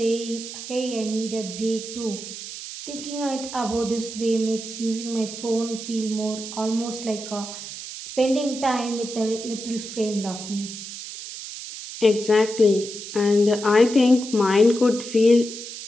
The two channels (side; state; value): right; noise; hiss, 10 dB below the sound